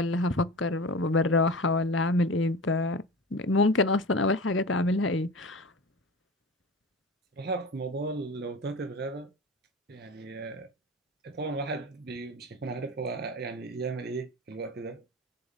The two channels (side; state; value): both; normal; correlation 0.32